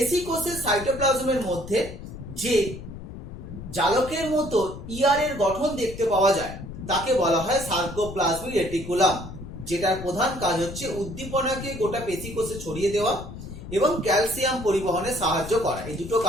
কোষের সাইটোপ্লাজমের মধ্যে যে জালকের মতো ইয়ারের গঠন দেখতে পাওয়া যায় তাকে বলা হয় সার্কোপ্লাজমিক রেটিকুলাম, যেটার প্রধান কাজ হচ্ছে উদ্দীপনাকে গোটা পেশি কোষে ছড়িয়ে দেওয়া এবং ক্যালসিয়াম পরিবহনে সাহায্য করা। এই দুটো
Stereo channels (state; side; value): noise; left; rumble, 11 dB below the sound